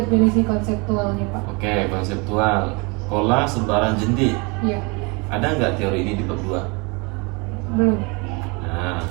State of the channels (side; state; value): left; quieter; 29.6 dB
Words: konseptualnya Pak. Oke, konseptual. Pola sebaran jentik. Iya, Ada nggak teori ini di bab 2? belum. Nah,